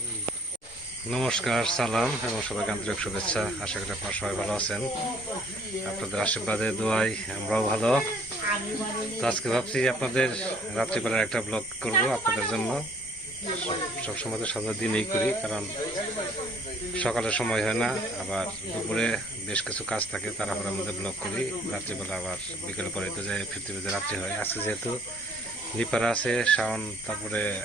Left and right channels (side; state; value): both; normal; correlation 0.59